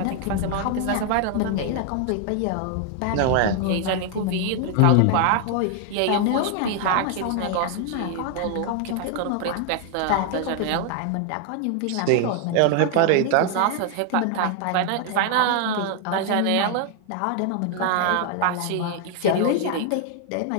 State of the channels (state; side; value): different; both; correlation 0.00